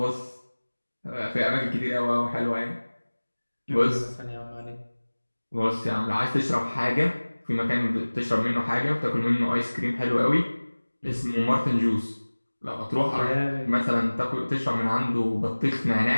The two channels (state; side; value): inverted; both; correlation -1.00